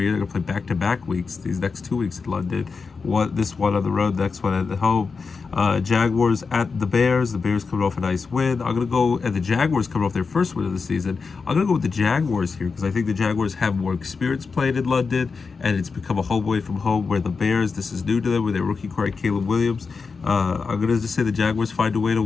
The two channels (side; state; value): right; quieter; 4.9 dB